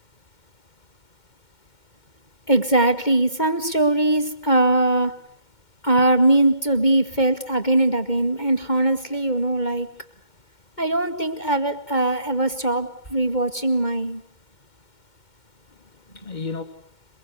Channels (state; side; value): late; right; 2.1 ms